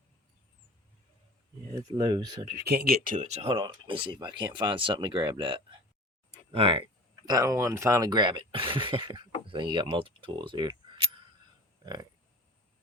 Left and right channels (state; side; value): normal; both; correlation 0.41